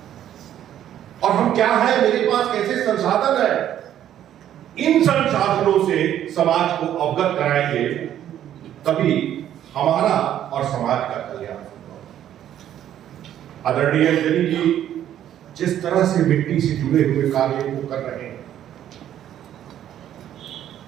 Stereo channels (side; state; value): left; quieter; 11.1 dB